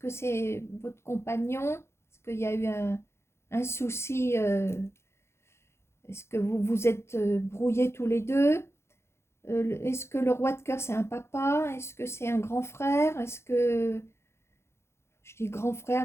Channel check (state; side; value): late; right; 0.13 ms